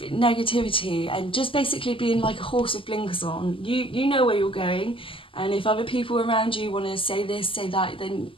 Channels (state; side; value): late; right; 0.25 ms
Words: negativity and just basically being like a horse with blinkers on. You know where you're going, and if other people around you want to say this, say that, then